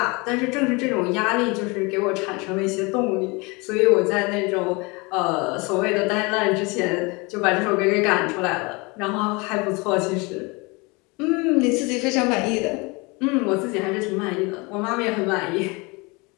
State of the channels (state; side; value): quieter; right; 27.1 dB